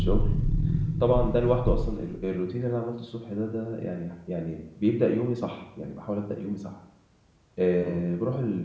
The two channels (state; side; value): identical; both; correlation 1.00